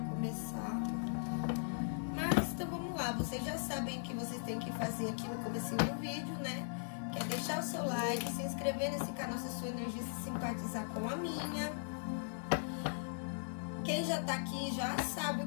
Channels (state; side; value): silent; right; 52 dB below the other